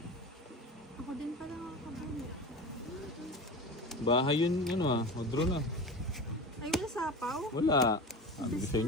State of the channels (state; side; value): normal; both; correlation 0.30